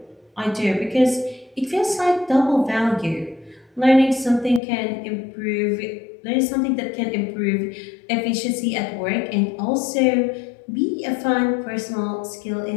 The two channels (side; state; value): right; drops out; at 4.6 s